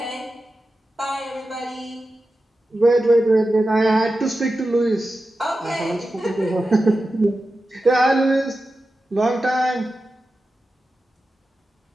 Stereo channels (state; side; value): normal; both; correlation 0.92